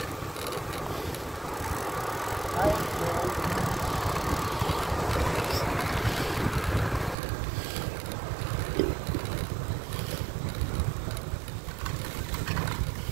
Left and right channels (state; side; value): drops out; left; at 7.2 s